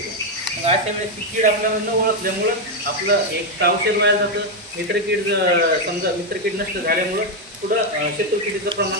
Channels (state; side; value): normal; both; correlation 0.04